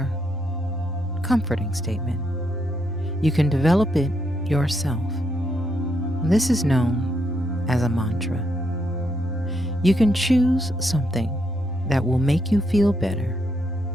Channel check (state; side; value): normal; both; correlation 0.78